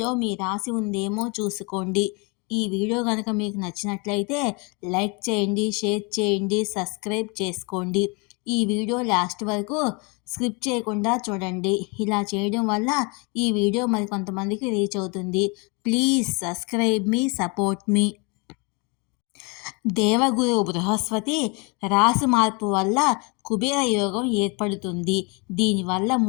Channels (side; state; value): right; quieter; 30.5 dB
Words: మీ రాశి ఉందేమో చూసుకోండి. ఈ వీడియో కనుక మీకు నచ్చినట్లయితే లైక్ చేయండి, షేర్ చేయండి, సబ్స్క్రైబ్ చేసుకోండి. ఈ వీడియో లాస్ట్ వరకు స్కిప్ చేయకుండా చూడండి. ఇలా చేయడం వల్ల ఈ వీడియో మరి కొంతమందికి రీచ్ అవుతుంది. ప్లీజ్ సబ్స్క్రైబ్ మీ, సపోర్ట్ మీ. దేవగురు బృహస్పతి రాశి మార్పు వల్ల కుబేర యోగం ఏర్పడుతుంది. దీనివల్ల